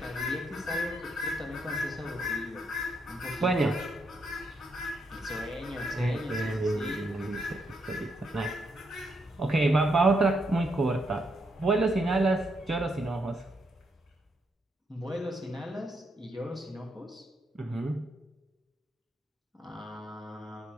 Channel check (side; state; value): both; normal; correlation 0.78